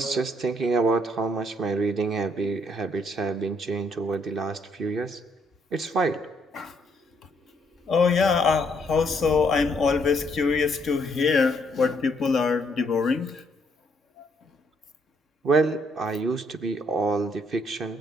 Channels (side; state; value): both; normal; correlation 0.70